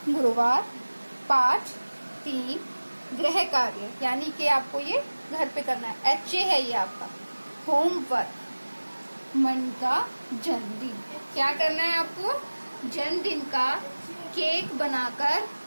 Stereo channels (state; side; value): inverted; both; correlation -1.00